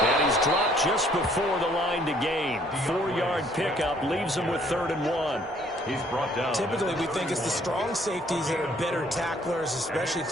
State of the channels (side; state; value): both; normal; correlation 0.62